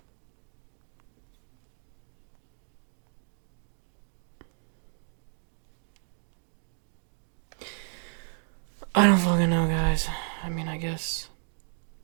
I don't fucking know, guys. I mean, I guess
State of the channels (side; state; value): left; silent; 56 dB below the other